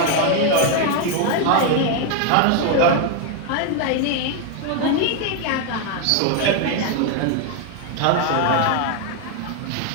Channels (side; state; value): both; different; correlation 0.01